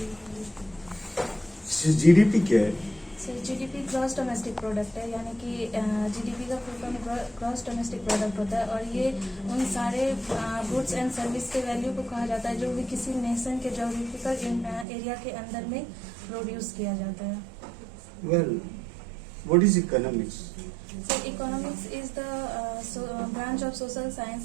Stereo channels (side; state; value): left; drops out; at 14.9 s